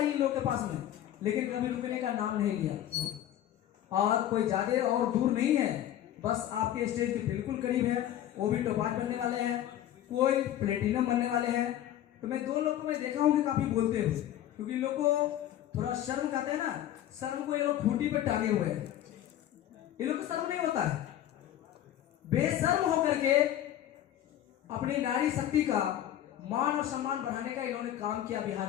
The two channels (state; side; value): quieter; right; 12.0 dB